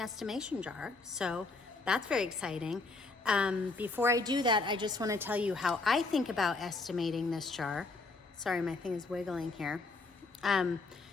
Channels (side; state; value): right; quieter; 3.7 dB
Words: jar. So that's very exciting. Before I do that, I just want to tell you how I think about estimating this jar. Sorry, my thing is wiggling here.